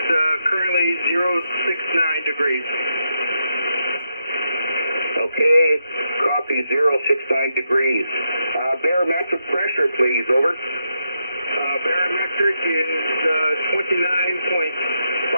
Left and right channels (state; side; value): inverted; both; correlation -0.83